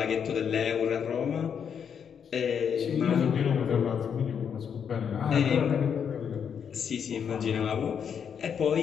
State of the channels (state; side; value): quieter; right; 7.5 dB